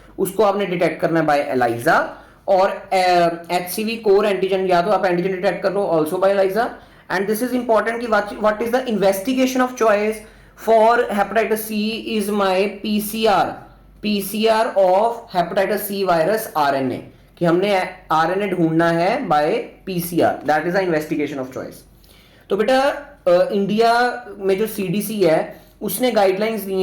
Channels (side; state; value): both; identical; correlation 1.00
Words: उसको आपने डिटेक्ट करना है बाय एलाइजा. और एचसीवी कोर एंटीजन, या तो आप एंटीजन डिटेक्ट कर लो also by ELISA. And this is important कि what is the investigation of choice for hepatitis C is my PCR of hepatitis C virus RNA, कि हमने RNA ढूंढना है by PCR, that is the investigation of choice. तो बेटा India में जो CDC है उसने गाइडलाइंस दी